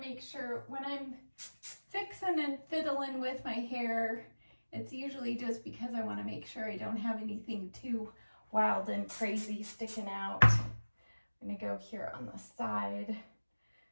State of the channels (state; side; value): inverted; both; correlation -1.00